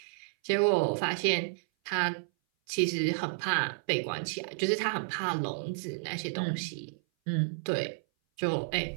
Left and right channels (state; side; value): silent; left; 57 dB below the other